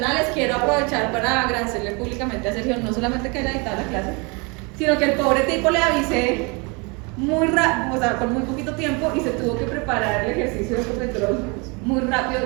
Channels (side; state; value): left; quieter; 30.5 dB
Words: Quiero aprovechar para agradecerle públicamente a Sergio, no solamente que haya editado la clase, sino que el pobre tipo le avisé muy rápido, o sea, con muy poquito tiempo y se tuvo que preparar el ejercicio de Ecopetrol muy rápido